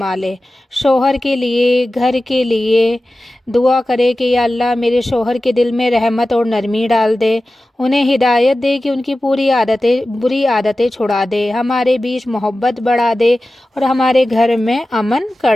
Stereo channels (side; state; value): both; normal; correlation 0.95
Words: ले। शोहर के लिए, घर के लिए दुआ करे कि या अल्लाह, मेरे शोहर के दिल में रहमत और नरमी डाल दे, उन्हें हिदायत दे कि उनकी बुरी आदतें छुड़ा दे, हमारे बीच मोहब्बत बढ़ा दे और हमारे घर में अमन